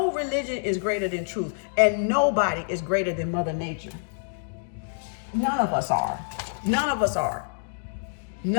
religion is greater than truth. And nobody is greater than Mother Nature. None of us are. None of us are.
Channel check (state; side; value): silent; right; digital silence